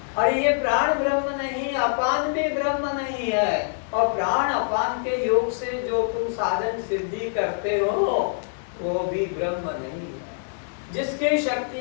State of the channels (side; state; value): right; silent; 62 dB below the other